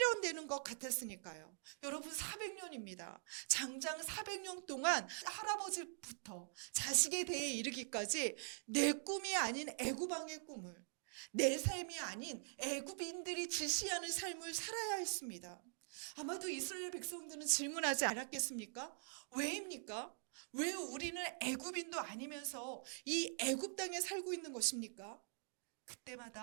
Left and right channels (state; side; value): silent; left; digital silence